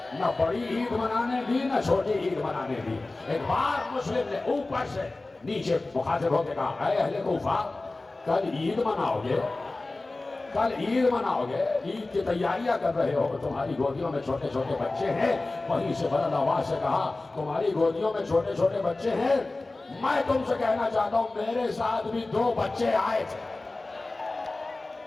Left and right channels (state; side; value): quieter; right; 3.1 dB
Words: نہ بڑی عید منانے دی نہ چھوٹی عید منانے دی۔ ایک بار مسلم نے اوپر سے نیچے مخاطب ہو کے کہا اے اہل کوفہ، کل عید مناؤ گے، کل عید مناؤ گے، عید کی تیاریاں کر رہے ہو، تمہاری گودیوں میں چھوٹے چھوٹے بچے ہیں۔ وہیں سے بلند آواز سے کہا تمہاری گودیوں میں چھوٹے چھوٹے بچے ہیں، میں تم سے کہنا چاہتا ہوں میرے ساتھ بھی 2 بچے آئے تھے۔